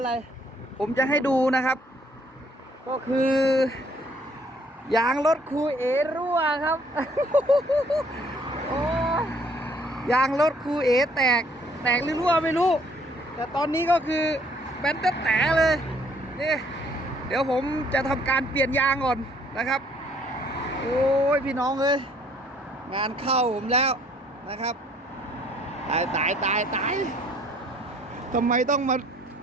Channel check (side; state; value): both; normal; correlation 0.62